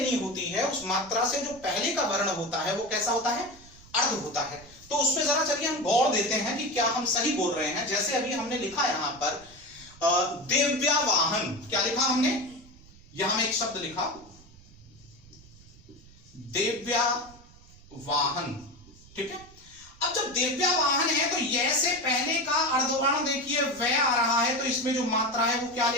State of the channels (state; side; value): noise; right; rumble, 23 dB below the sound